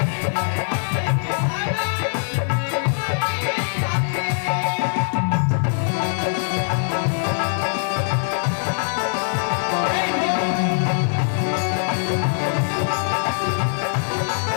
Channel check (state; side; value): silent; right; digital silence